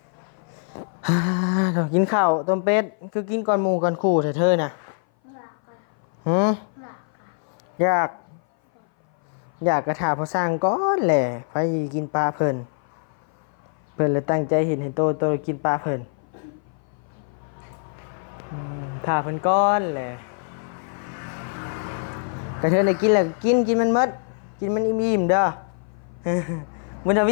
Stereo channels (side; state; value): right; silent; 58 dB below the other